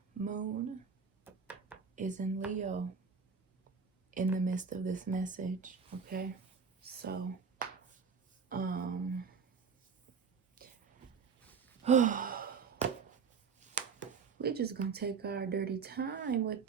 moon is in Leo in the midst of this message, okay? So we're just gonna take our dirty time with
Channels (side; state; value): left; quieter; 5.8 dB